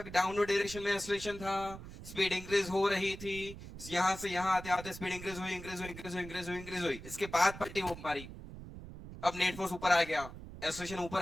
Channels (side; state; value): right; noise; rumble, 13 dB below the sound